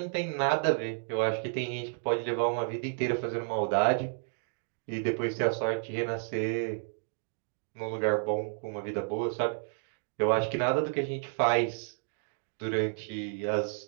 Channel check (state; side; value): silent; left; 57 dB below the other